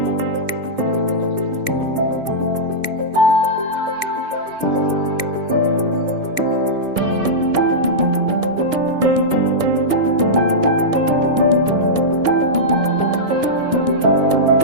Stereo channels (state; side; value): late; left; 1.6 ms